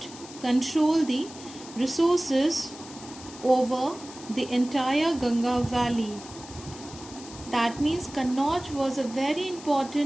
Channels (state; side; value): noise; left; hiss, 16 dB below the sound